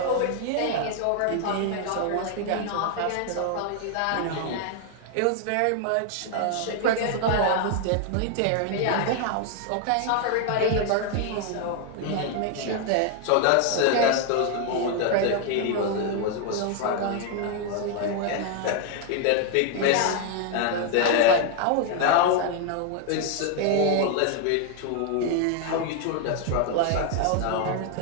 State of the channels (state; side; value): different; both; correlation 0.00